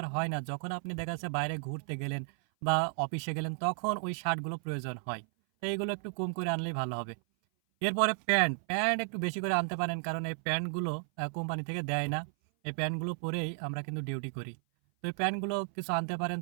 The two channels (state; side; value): silent; left; 56 dB below the other